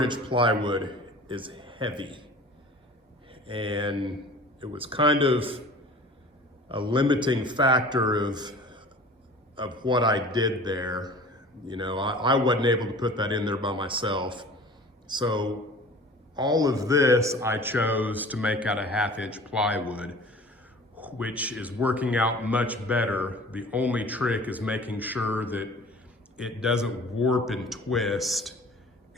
inch plywood is heavy. And it was kind of a limiting factor of what I did there. You know, I wasn't able to put that in there by myself. So all of this I chose to make out of 1/2 inch plywood, which is working out much better. The only trick is making sure that it doesn't warp and twist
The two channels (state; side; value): normal; both; correlation 0.43